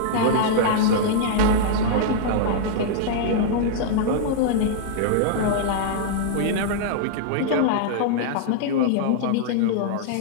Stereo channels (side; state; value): both; different; correlation -0.02